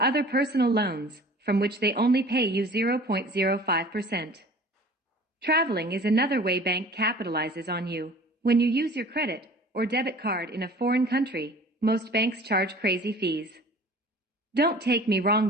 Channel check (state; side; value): normal; both; correlation 0.45